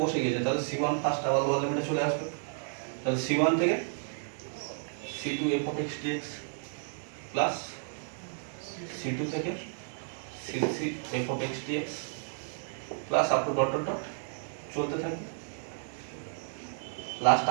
বসে গেছে তাহলে c1 ফার্স্ট আবার লোয়ার লিমিটে চলে আসবে, তাহলে c1 থেকে c2 f of x dx plus c2 থেকে c3 f of x dx plus up to dot dot dot চলতে থাকবে, লাস্ট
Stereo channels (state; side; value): silent; left; digital silence